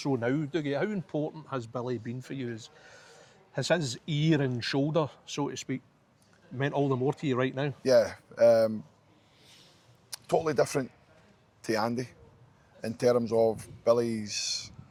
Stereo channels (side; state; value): both; identical; correlation 1.00